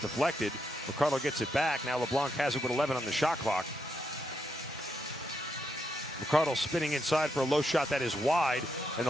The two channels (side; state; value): both; normal; correlation 0.80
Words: McCardle gets it back. Now LeBlanc has it with 11 on the shot clock. McCardle spinning inside for a low shot that is wide, and